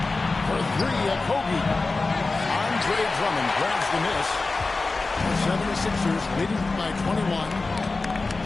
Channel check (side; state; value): right; quieter; 3.6 dB